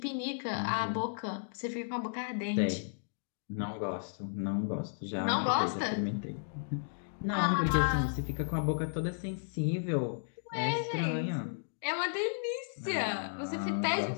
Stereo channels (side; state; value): right; silent; digital silence